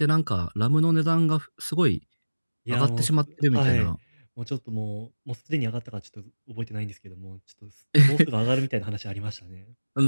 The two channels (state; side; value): inverted; both; correlation -1.00